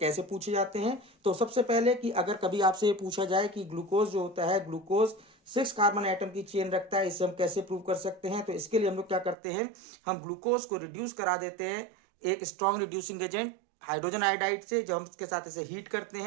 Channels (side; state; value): left; drops out; at 9.3 s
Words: पूछे जाते हैं। तो सबसे पहले कि अगर कभी आपसे पूछा जाए कि ग्लूकोज जो होता है, ग्लूकोज 6 कार्बन एटम की चेन रखता है, इसे हम कैसे प्रूव कर सकते हैं? तो इसके लिए हम लोग क्या करते हैं, हम ग्लूकोज को रिड्यूस करा देते हैं एक strong reducing agent hydrogen iodide से। जब हम इसके साथ इसे हीट करते